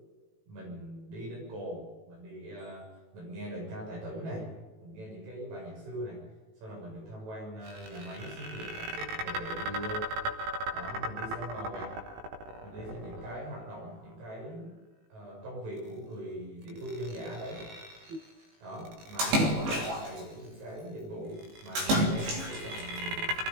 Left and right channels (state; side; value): late; left; 18 ms